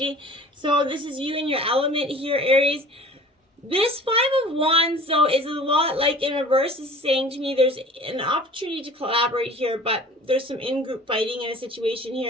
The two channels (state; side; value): normal; both; correlation 0.45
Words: So this is you in your element here, Aries. This Five of Wands, though, is a lot like in reverse. This is saying to me there's an opportunity to collaborate here, but there's some in-group fighting in a situation